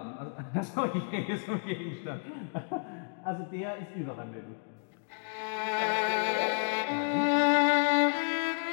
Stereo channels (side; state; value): right; silent; 57 dB below the other